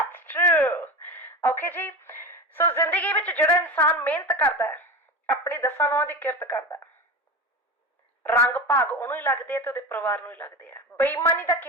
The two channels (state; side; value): normal; both; correlation 0.26